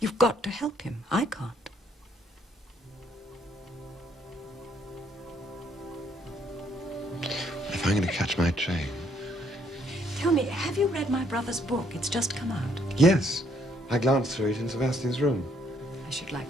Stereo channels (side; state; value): both; normal; correlation 0.69